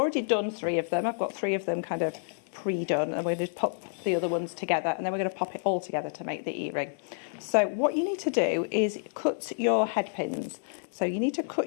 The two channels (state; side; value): silent; right; digital silence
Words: done 3 of them. I've got 3 of them kind of pre-done, and we're going to pop the other ones together, and then we're going to pop it all together to make the earring. So what you need to do is cut your head pins. So you need to cut